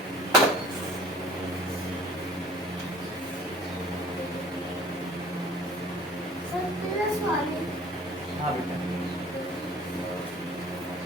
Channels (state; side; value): normal; both; correlation 0.48